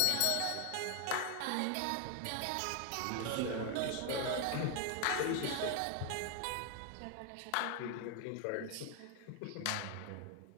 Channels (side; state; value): both; different; correlation 0.00